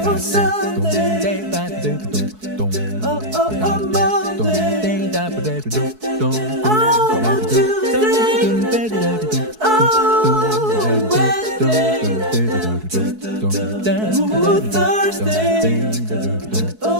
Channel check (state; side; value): late; left; 4.6 ms